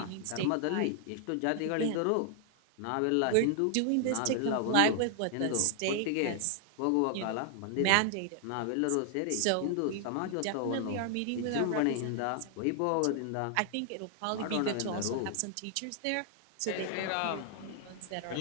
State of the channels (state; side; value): different; both; correlation 0.00